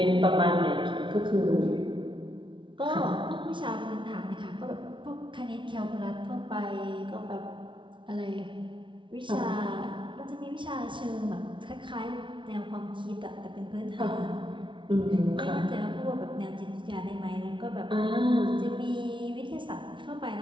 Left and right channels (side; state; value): left; late; 0.24 ms